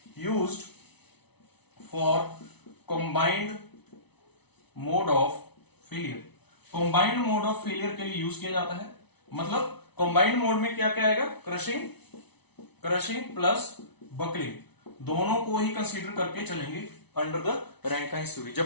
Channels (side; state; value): right; late; 0.99 ms